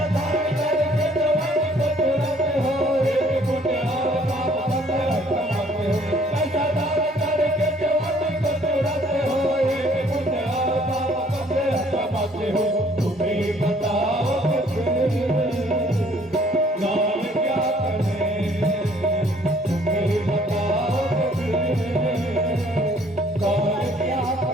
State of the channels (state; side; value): normal; both; correlation 0.60